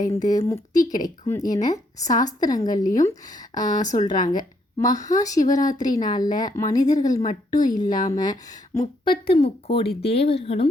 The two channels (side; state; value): both; normal; correlation 0.72